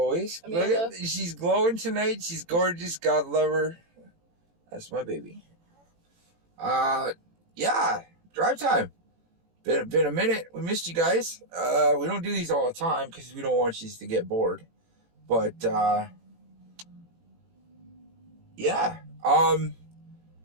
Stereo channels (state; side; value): late; left; 18 ms